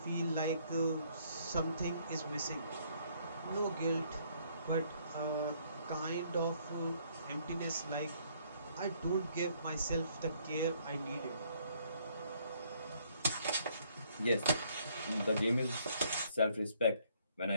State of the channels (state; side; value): inverted; both; correlation -0.66